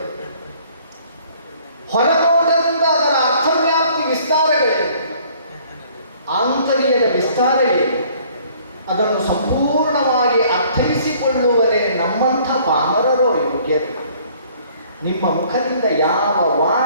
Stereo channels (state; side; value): inverted; both; correlation -0.58